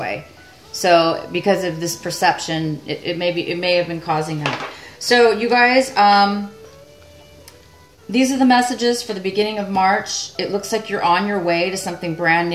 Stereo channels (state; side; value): identical; both; correlation 1.00